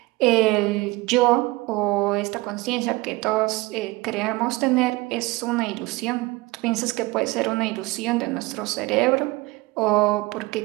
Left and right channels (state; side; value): quieter; left; 21.4 dB